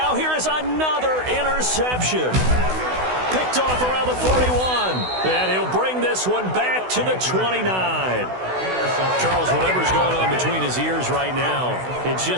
here is another interception. Picked off around the 41. And he'll bring this one back to the 29. Charles, whatever's going on between his ears right now, it's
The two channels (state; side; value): late; left; 16 ms